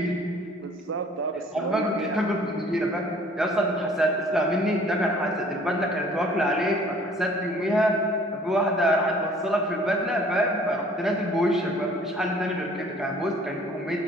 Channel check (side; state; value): both; normal; correlation 0.54